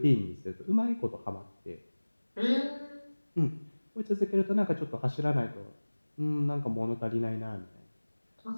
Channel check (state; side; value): inverted; both; correlation -1.00